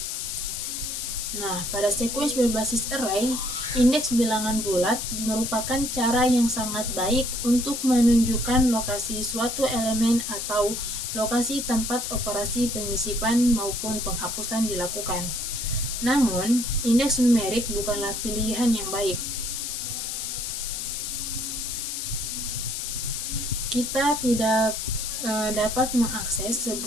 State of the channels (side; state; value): left; noise; hiss, 4 dB below the sound